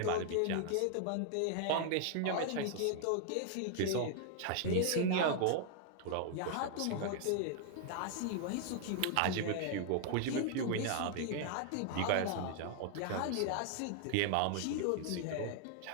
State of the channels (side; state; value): both; different; correlation 0.00